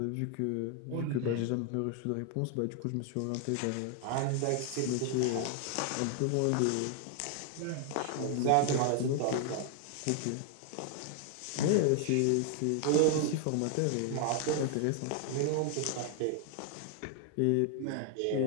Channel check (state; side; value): different; both; correlation 0.00